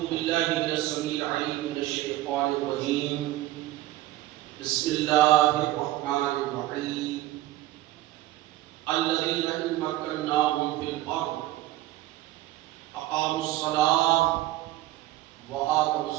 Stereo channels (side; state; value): left; quieter; 15.7 dB